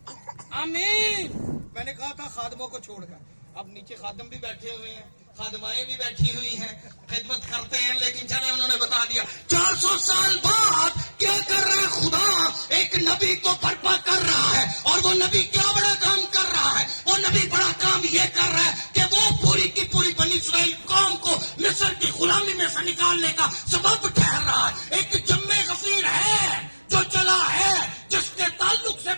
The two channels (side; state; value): both; inverted; correlation -1.00